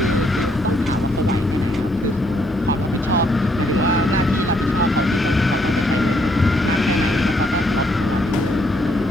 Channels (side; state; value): both; normal; correlation 0.71